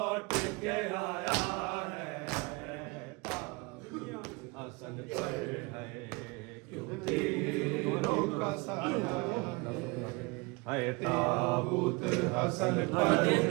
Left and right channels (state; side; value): quieter; left; 27.2 dB